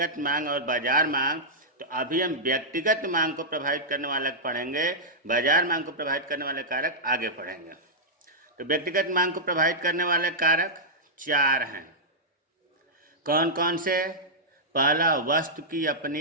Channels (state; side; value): normal; both; correlation -0.11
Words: मांग और बाजार मांग। तो अभी हम व्यक्तिगत मांग को प्रभावित करने वाला पढ़ेंगे, बाजार मांग को प्रभावित करने वाले कारक आगे पढ़ेंगे। तो व्यक्तिगत मांग को प्रभावित करने वाले कारक 4 हैं। कौन कौन से? पहला, वस्तु की